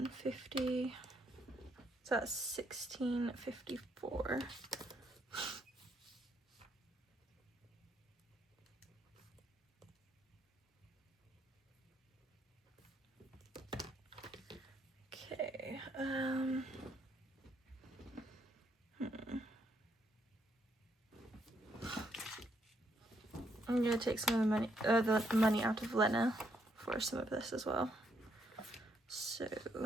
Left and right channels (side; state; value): both; normal; correlation 0.74